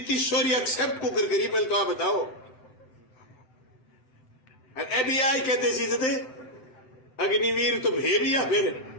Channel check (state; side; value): late; right; 7.8 ms